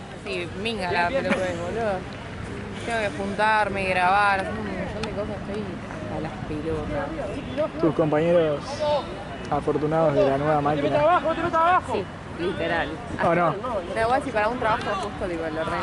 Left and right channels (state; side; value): identical; both; correlation 1.00